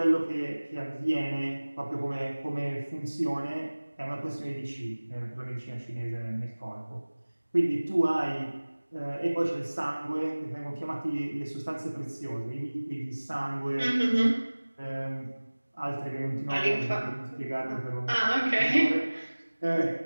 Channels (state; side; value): inverted; both; correlation -1.00